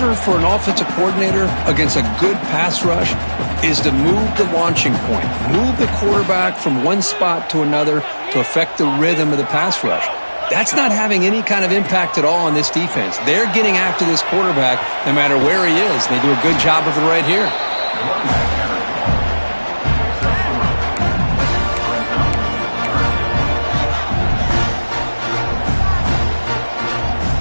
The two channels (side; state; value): both; inverted; correlation -1.00